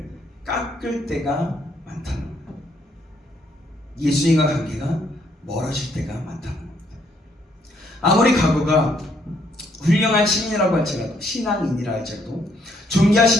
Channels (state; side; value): normal; both; correlation 0.70